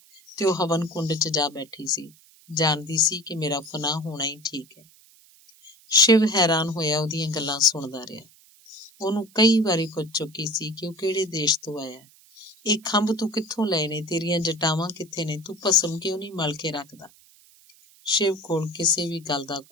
ਤੇ ਉਹ ਹਵਨ ਕੁੰਡ 'ਚ ਜਾ ਬੈਠੀ ਸੀ। ਜਾਣਦੀ ਸੀ ਕਿ ਮੇਰਾ ਫਨਾਹ ਹੋਣਾ ਹੀ ਠੀਕ ਹੈ। ਸ਼ਿਵ ਹੈਰਾਨ ਹੋਇਆ ਉਹਦੀਆਂ ਗੱਲਾਂ ਸੁਣਦਾ ਰਿਹਾ। ਉਹਨੂੰ ਕਈ ਵਾਰੀ ਪੁੱਛ ਚੁੱਕੀ ਸੀ ਕਿ ਉਹ ਕਿਹੜੇ ਦੇਸ਼ ਤੋਂ ਆਇਆ। ਇਹ ਖੰਭ ਤੂੰ ਕਿੱਥੋਂ ਲਏ ਨੇ? ਤੇਰੀਆਂ ਜਟਾਵਾਂ ਕਿੱਥੇ ਨੇ? ਤੂੰ ਭਸਮ ਕਿਉਂ ਨਹੀਂ ਮਲ ਕੇ ਰੱਖਦਾ? ਸ਼ਿਵ ਕੋਲ ਕਿਸੇ ਵੀ ਗੱਲ ਦਾ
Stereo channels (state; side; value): noise; right; hiss, 27 dB below the sound